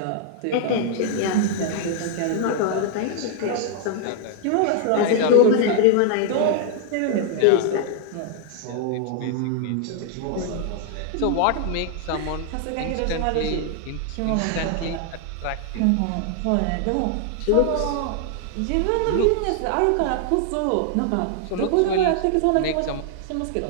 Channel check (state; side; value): different; both; correlation 0.00